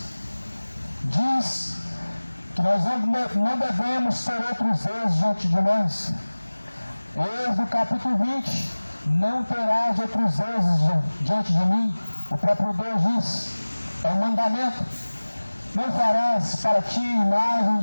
que nós não devemos ter outros deuses diante de nós. Êxodo capítulo 20: não terás outros deuses diante de mim. O próprio Deus diz, é um mandamento. Não farás para ti imagem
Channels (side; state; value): both; inverted; correlation -1.00